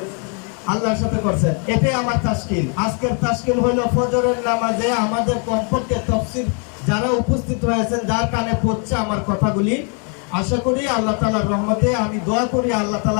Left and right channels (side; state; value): right; quieter; 38.9 dB